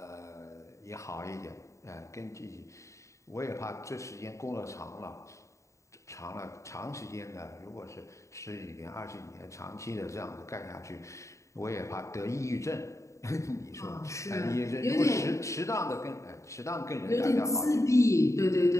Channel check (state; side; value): late; right; 0.15 ms